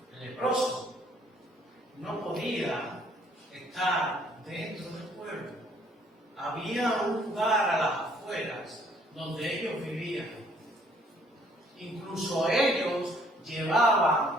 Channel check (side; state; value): both; normal; correlation 0.63